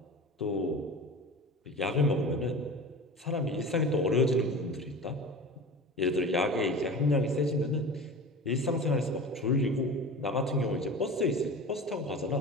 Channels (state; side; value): normal; both; correlation 0.34